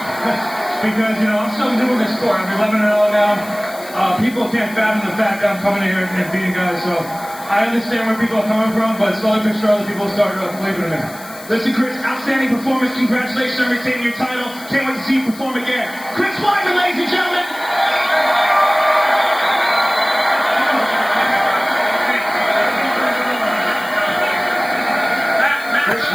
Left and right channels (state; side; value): noise; left; hiss, 18 dB below the sound